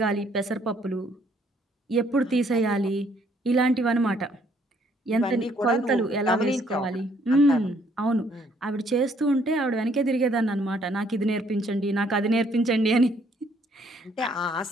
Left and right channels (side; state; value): both; normal; correlation 0.66